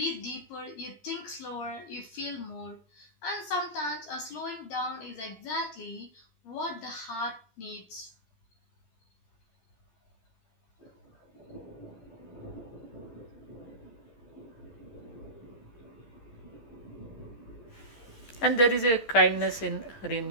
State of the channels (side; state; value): right; late; 13 ms